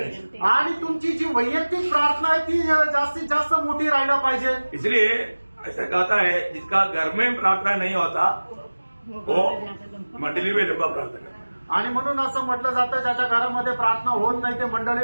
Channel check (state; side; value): inverted; both; correlation -1.00